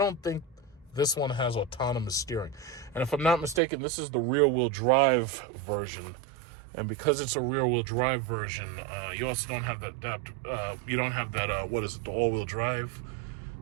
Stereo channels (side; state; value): left; drops out; at 3.6 s